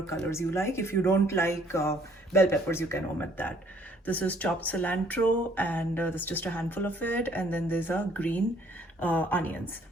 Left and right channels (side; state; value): both; normal; correlation 0.62